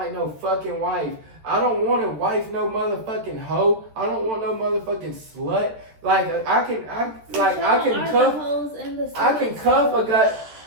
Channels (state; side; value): late; left; 13 ms